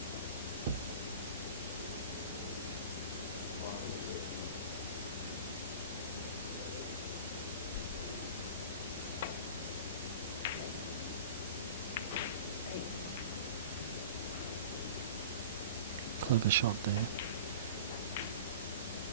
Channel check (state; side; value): inverted; both; correlation -0.36